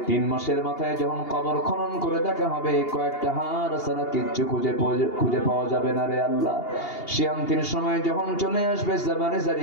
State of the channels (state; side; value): late; right; 2.8 ms